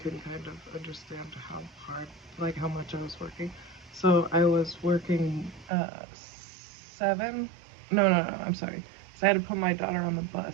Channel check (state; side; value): drops out; left; at 5.7 s